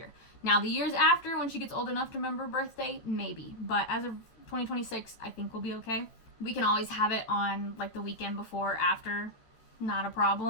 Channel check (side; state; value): right; late; 14 ms